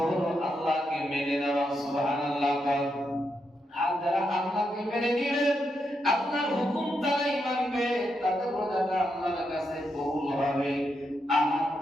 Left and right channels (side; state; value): both; normal; correlation 0.83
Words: হলো আল্লাহকে মেনে নেওয়া। সুবহানাল্লাহ। আর যারা আল্লাহকে মেনে নিবে, আল্লাহর হুকুম তারাই মানবে, তাদের রোজাটা আল্লাহর কাছে কবুল হবে। আর